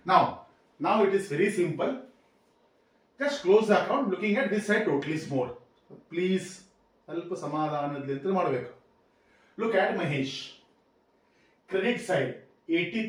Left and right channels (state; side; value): identical; both; correlation 1.00